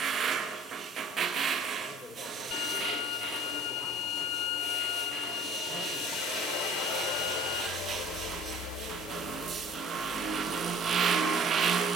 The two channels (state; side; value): normal; both; correlation 0.49